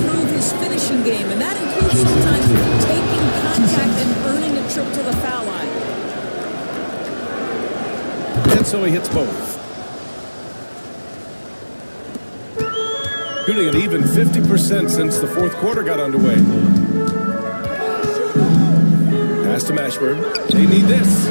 his finishing game, and that includes sometimes taking contact and earning a trip to the foul line. And so he hits both. Shooting an even 50% since the fourth quarter got underway. Pass to Mashburn. They need this.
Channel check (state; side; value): inverted; both; correlation -1.00